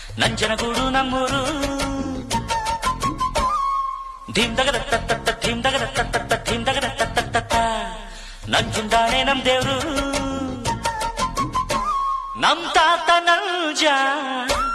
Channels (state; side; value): identical; both; correlation 1.00